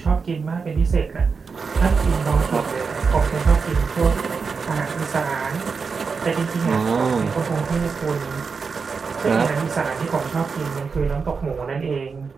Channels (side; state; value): left; quieter; 5.2 dB